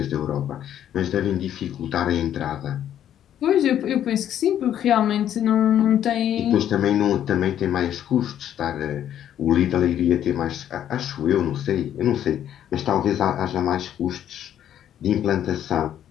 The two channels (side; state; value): right; quieter; 10.5 dB